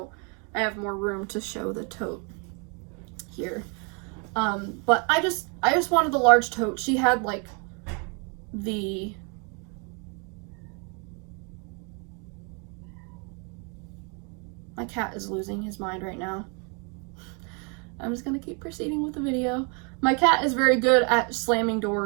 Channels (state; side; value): quieter; left; 35.6 dB